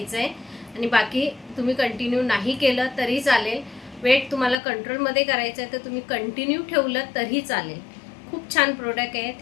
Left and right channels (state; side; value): drops out; right; at 4.5 s